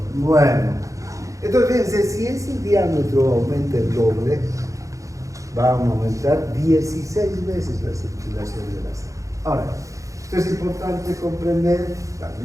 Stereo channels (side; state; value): left; late; 0.16 ms